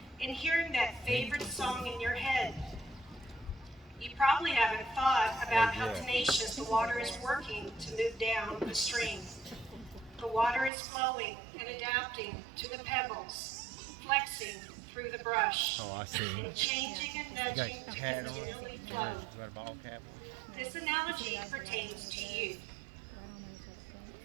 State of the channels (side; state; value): left; drops out; at 10.7 s